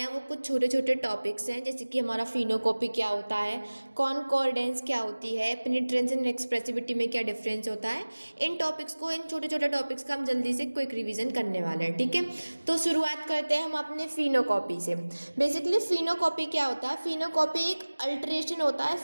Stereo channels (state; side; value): inverted; both; correlation -1.00